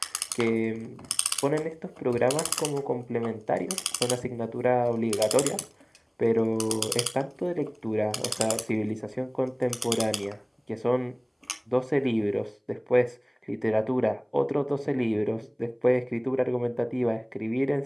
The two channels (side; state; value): both; identical; correlation 1.00